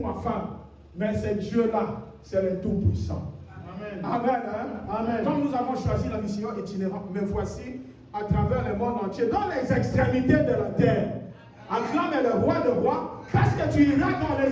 ma femme, mais c'est Dieu-là, c'est le tout puissant. Amen. Amen, hein? Amen. Comme nous avons choisi la mission itinérante, me voici à travers le monde entier, dans les extrémités de la terre. Acclame le roi de rois, parce que tu iras dans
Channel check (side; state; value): both; identical; correlation 1.00